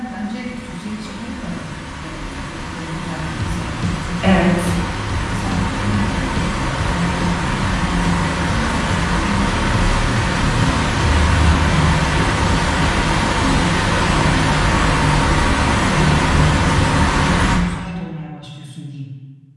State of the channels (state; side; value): identical; both; correlation 1.00